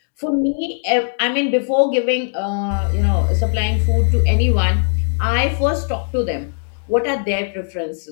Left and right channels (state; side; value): silent; right; digital silence